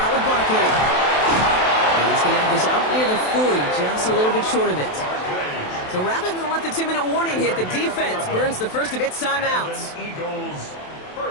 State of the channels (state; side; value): late; right; 27 ms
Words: with Barkley. And he's going to have this out near the 40, just a little bit short of it. So rather than let the 2-minute warning hit, the defense burns the first of its timeouts. Eagles,